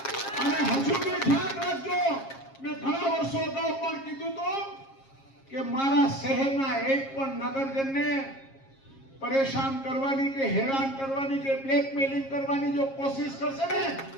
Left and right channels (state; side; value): late; right; 7.4 ms